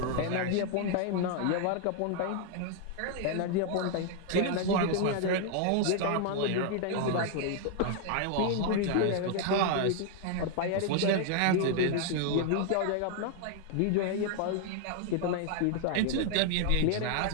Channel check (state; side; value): different; both; correlation 0.00